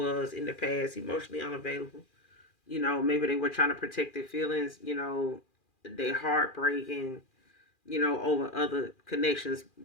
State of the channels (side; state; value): right; late; 2.4 ms